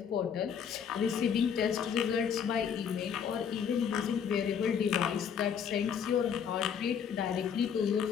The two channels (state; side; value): quieter; right; 7.5 dB